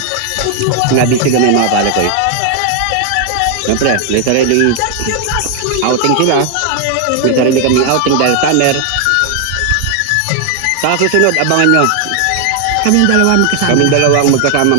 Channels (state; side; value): different; both; correlation 0.00